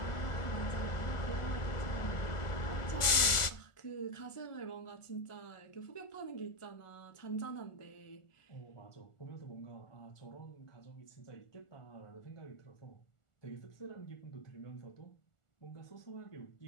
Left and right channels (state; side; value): late; right; 1.4 ms